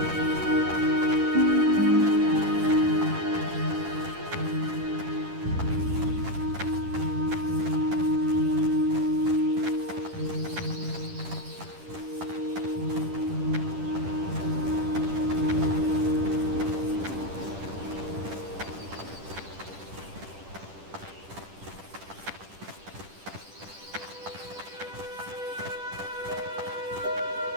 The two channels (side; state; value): left; late; 10 ms